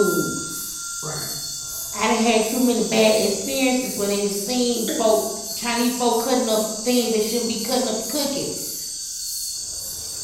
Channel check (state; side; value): identical; both; correlation 1.00